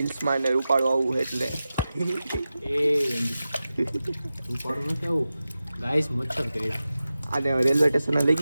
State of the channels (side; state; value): both; inverted; correlation -0.94